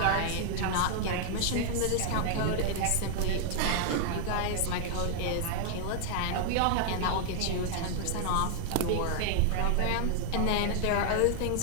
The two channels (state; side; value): different; both; correlation 0.00